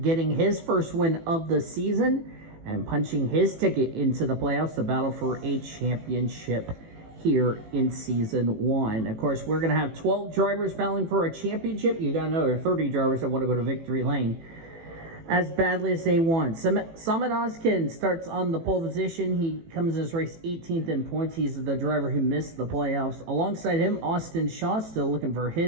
getting his first win of the season and punching his ticket into the playoffs, the battle for a championship here in Season 1. Of course, we're going to have 12 drivers battling for a championship. You got another 30 drivers that want to go to victory lane as badly as they want. Samit Oskin starts on the pole position. He comes in his race 18th in points. He's the driver who missed the playoffs. Alongside him, Austin Shaw still looking for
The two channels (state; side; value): late; left; 18 ms